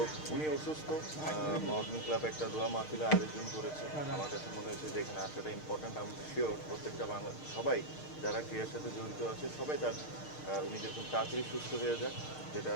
উনি অসুস্থ, মাউন্টেন ক্লাব একটা দোয়া মাহফিলে আয়োজন করেছে। আমার কাছে মনে হয়েছে যে এখানে আসাটা ইম্পর্ট্যান্ট। আমি শিওর প্রত্যেকটা সবাই যারা ক্রিয়ার সাথে জড়িত আছে সবাই উনি যেরকম তাড়াতাড়ি সুস্থ হয়ে যাক, যেটা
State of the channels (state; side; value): late; right; 6.5 ms